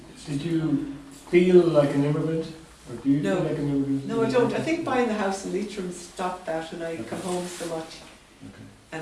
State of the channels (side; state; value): both; identical; correlation 1.00